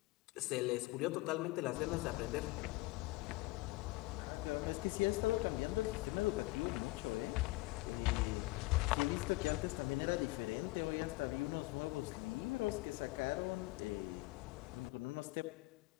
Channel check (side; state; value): right; quieter; 21.2 dB